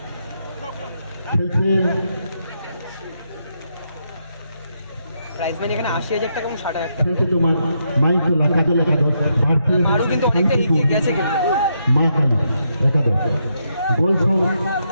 খেলছে প্রাইজ মানি এখানে 80,000 টাকা এবং 60,000 টাকা। খেলছে তোমার মাইকোলা কাজল একাদশ ভারতীয় আরও কিন্তু অনেকটা এগিয়ে গেছে কিন্তু। মা কালী একাদশ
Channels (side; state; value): both; inverted; correlation -0.80